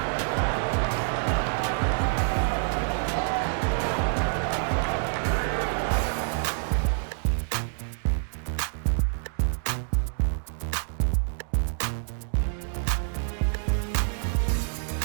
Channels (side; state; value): left; silent; digital silence